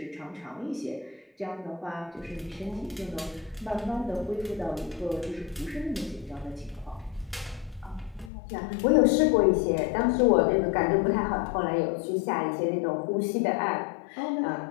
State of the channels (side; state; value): right; drops out; at 8.3 s